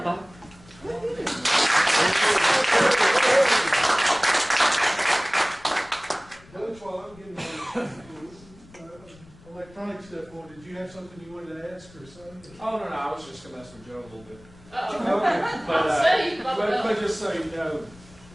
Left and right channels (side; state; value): left; noise; rumble, 24 dB below the sound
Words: Bob. Coach, while I'm getting electronic stuff on, did you have something you wanted to ask or something? Oh, no, I was just going to mess with Joe a little bit. Okay. But just so you know,